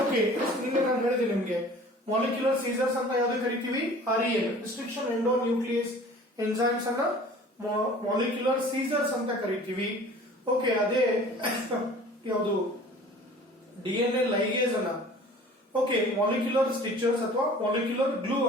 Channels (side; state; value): both; normal; correlation 0.46